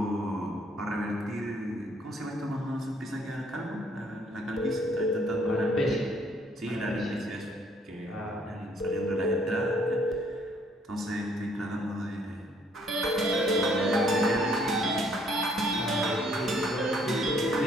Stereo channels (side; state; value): both; normal; correlation 0.64